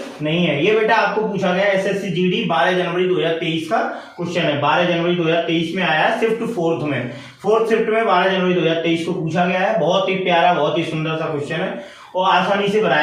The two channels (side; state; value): both; identical; correlation 1.00